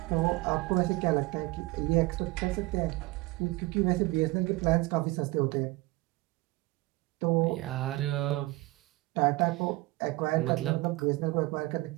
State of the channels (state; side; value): quieter; left; 21.0 dB